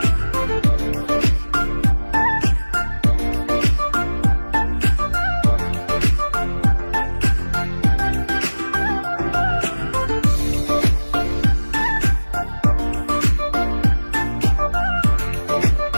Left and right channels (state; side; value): inverted; both; correlation -1.00